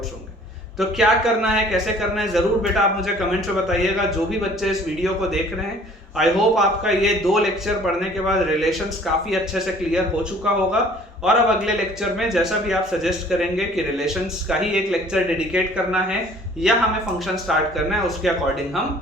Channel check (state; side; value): normal; both; correlation 0.53